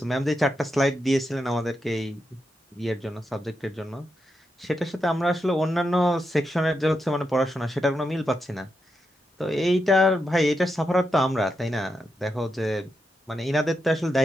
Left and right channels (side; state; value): both; normal; correlation 0.85